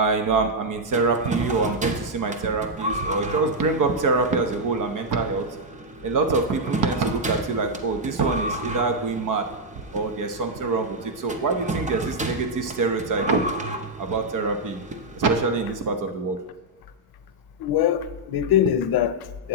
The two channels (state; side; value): normal; both; correlation -0.03